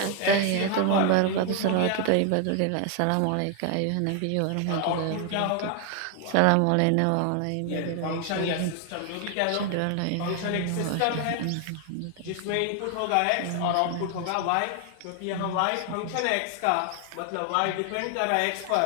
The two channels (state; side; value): different; both; correlation 0.00